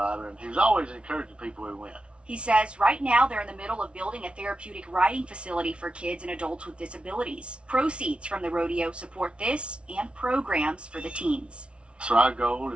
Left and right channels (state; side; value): late; left; 0.059 ms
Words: and he was always encouraging people who went. He says right now they're in the middle of building a therapeutic riding facility for kids and adults with disabilities. Proceeds from the rodeo support this and programs for the teens. So our goal